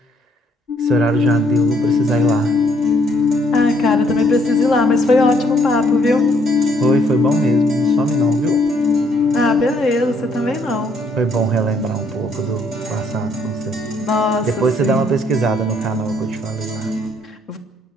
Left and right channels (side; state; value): both; normal; correlation 0.68